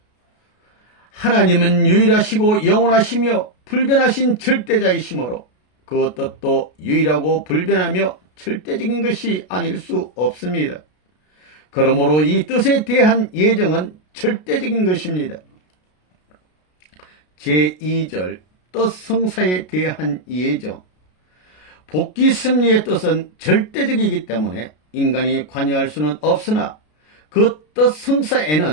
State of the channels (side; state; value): right; late; 33 ms